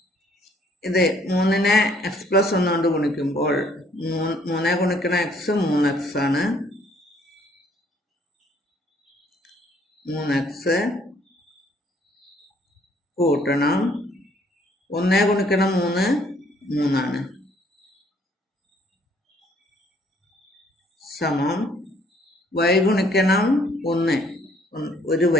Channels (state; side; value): normal; both; correlation 0.63